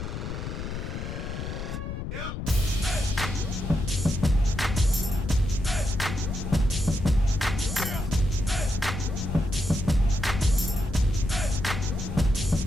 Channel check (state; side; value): noise; left; rumble, 5 dB below the sound